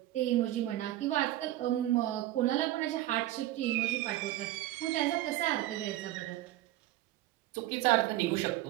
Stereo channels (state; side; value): quieter; left; 15.1 dB